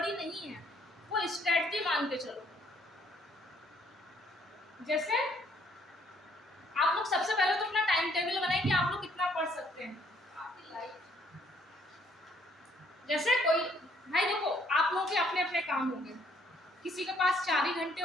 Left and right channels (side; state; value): both; normal; correlation 0.66